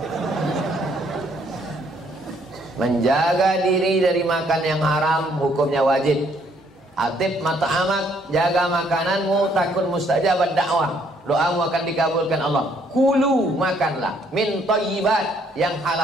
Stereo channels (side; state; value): both; normal; correlation 0.67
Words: Menjaga diri dari makan yang haram hukumnya wajib. Atib mata'amak, jaga makananmu, takun mustajabat dakwah, doamu akan dikabulkan Allah. Kulu, makanlah min thayyibat, yang